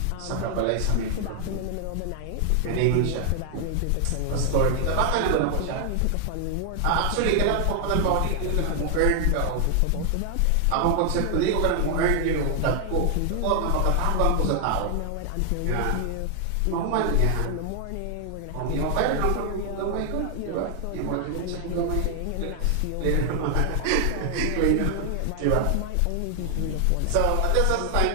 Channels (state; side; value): different; both; correlation 0.00